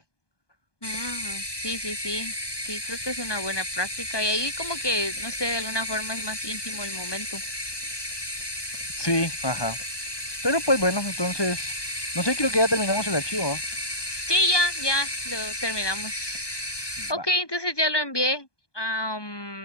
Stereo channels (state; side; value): late; right; 1.2 ms